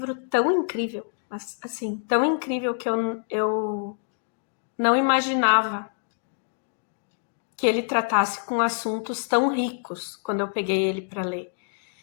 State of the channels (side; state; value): right; silent; digital silence